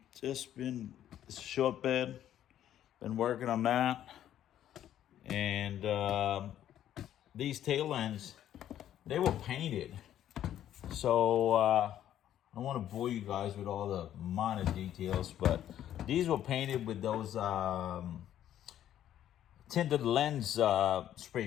Just been it's a short bed. Been working on that, and these tail ends, they were painted. So I don't want to bore you guys with all the minor details, but these were painted with those tinted lens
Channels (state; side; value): quieter; right; 11.3 dB